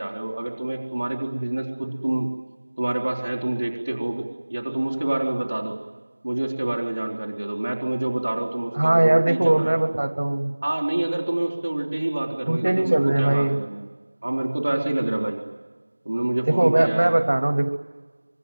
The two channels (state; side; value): inverted; both; correlation -1.00